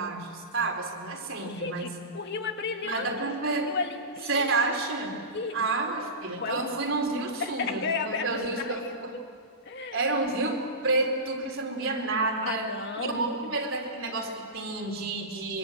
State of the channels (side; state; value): both; normal; correlation -0.19